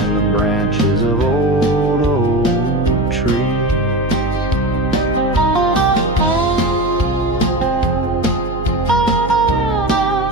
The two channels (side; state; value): right; noise; hum, 10 dB below the sound